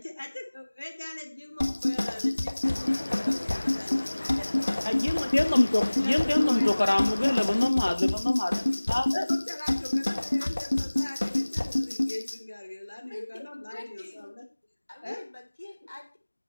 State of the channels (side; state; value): both; inverted; correlation -1.00